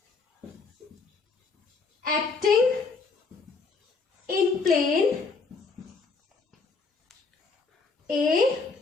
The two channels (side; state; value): right; quieter; 4.4 dB